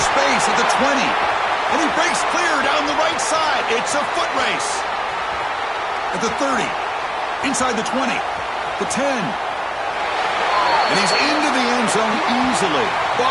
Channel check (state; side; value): identical; both; correlation 1.00